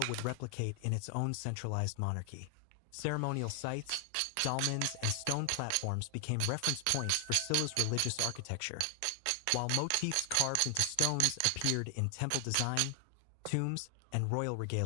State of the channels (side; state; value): both; different; correlation 0.00